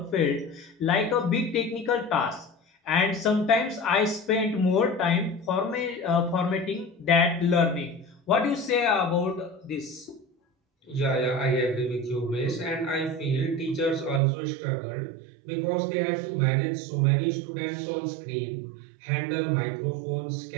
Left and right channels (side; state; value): left; drops out; at 14.2 s